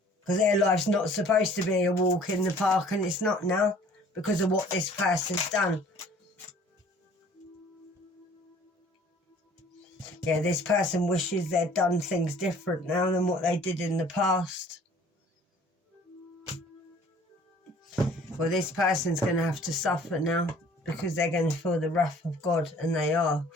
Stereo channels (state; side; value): normal; both; correlation 0.53